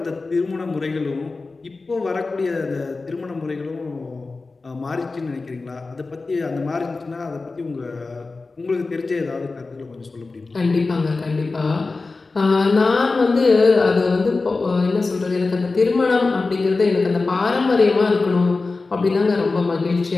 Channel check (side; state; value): right; quieter; 3.8 dB